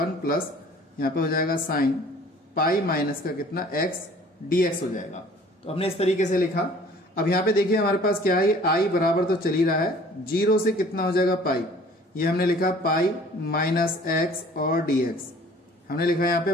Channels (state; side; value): normal; both; correlation 0.51